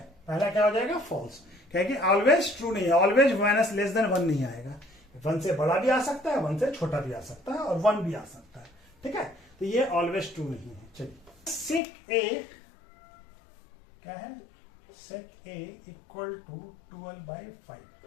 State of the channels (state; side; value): drops out; right; at 11.8 s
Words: पहला क्या हो जाएगा फॉल्स, क्योंकि ऑलवेज ट्रू नहीं है, ऑलवेज माइनस लेस देन 1 नहीं आएगा, 1 से बड़ा भी आ सकता है, 1 से छोटा भी आ सकता है और 1 भी आ सकता है। ठीक है, तो ये ऑलवेज ट्रू नहीं है। चलिए सेक ए क्या है, सेक ए इक्वल टू